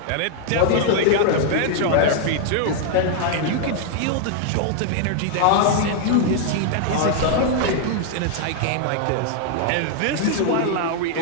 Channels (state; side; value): different; both; correlation 0.00